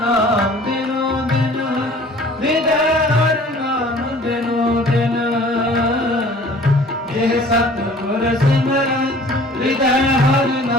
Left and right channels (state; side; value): normal; both; correlation 0.49